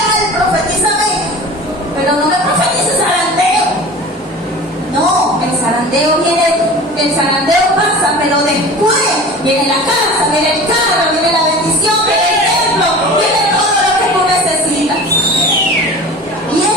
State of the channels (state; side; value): normal; both; correlation 0.37